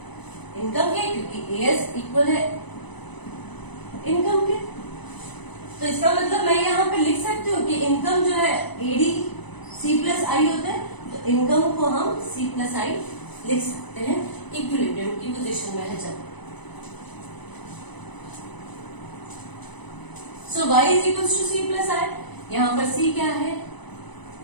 इनकम के, क्योंकि AS इक्वल है इनकम के। तो इसका मतलब मैं यहाँ पे लिख सकती हूँ कि इनकम जो है AD C प्लस I होता है, तो इनकम को हम C प्लस I लिख सकते हैं इक्विलिब्रियम की पोजीशन में है जब। So Y is equal to C plus I, यहाँ पर C क्या है,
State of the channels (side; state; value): right; late; 0.99 ms